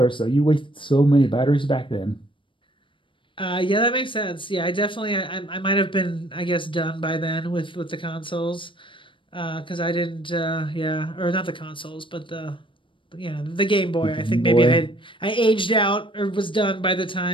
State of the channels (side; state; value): right; late; 0.25 ms